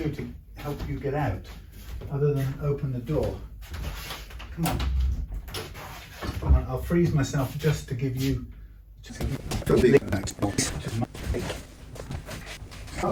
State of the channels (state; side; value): identical; both; correlation 1.00